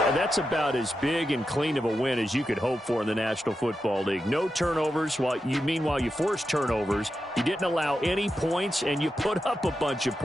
about as big and clean of a win as you could hope for in the National Football League. No turnovers. Meanwhile, you forced turnovers. You didn't allow any points, and you put up a bunch of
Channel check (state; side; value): normal; both; correlation 0.89